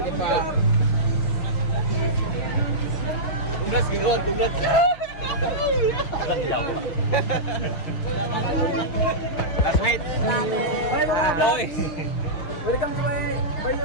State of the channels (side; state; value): right; late; 6.3 ms